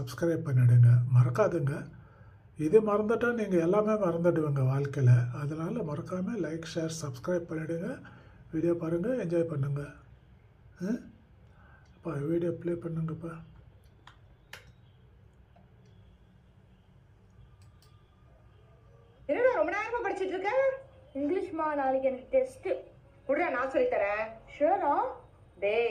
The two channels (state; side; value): identical; both; correlation 1.00